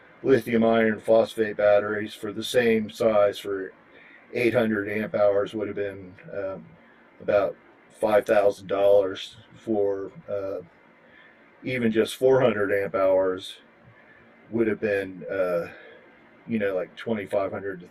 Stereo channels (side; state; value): both; identical; correlation 1.00